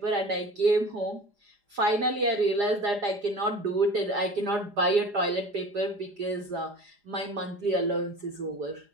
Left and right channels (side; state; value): left; late; 4.9 ms